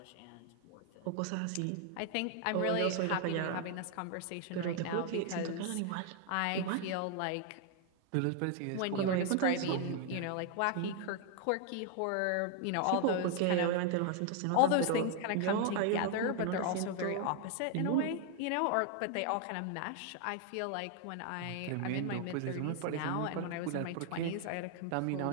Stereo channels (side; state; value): both; different; correlation 0.00